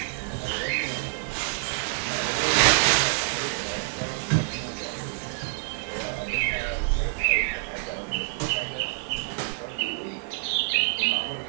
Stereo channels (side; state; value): left; silent; 60 dB below the other